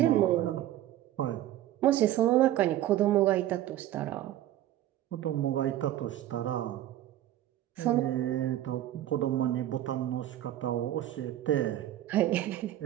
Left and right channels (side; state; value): left; quieter; 13.1 dB